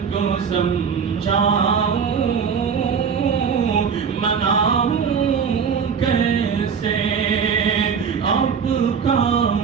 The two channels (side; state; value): left; quieter; 6.5 dB